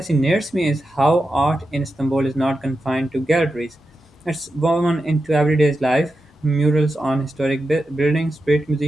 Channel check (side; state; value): both; normal; correlation 0.90